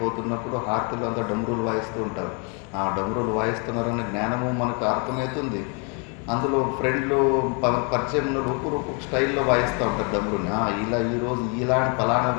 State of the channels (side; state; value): right; quieter; 36.0 dB